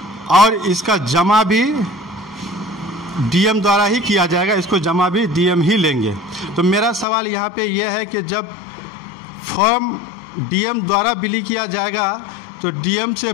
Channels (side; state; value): right; drops out; at 7.1 s